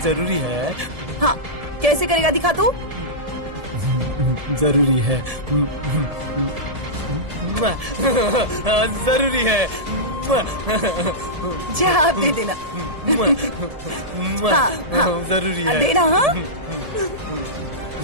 जरूरी है? हाँ कैसे करेगा दिखा तो। जरूरी है। जरूरी है। जा आप दे देना। हाँ, हाँ, जरूरी है। देना। हाँ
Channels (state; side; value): late; left; 1.7 ms